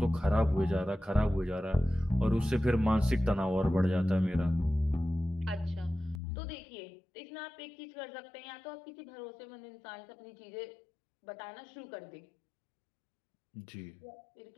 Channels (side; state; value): right; drops out; at 6.2 s